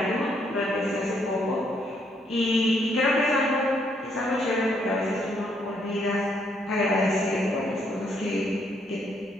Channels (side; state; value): both; normal; correlation 0.72